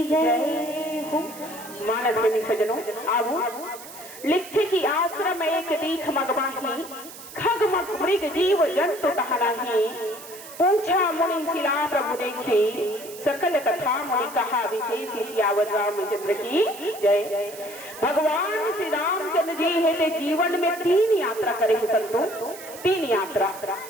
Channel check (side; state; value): right; noise; hiss, 15 dB below the sound